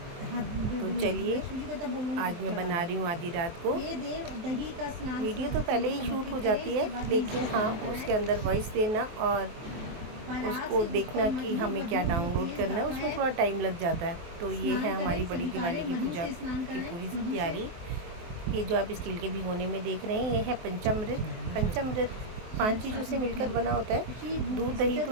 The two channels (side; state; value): left; late; 23 ms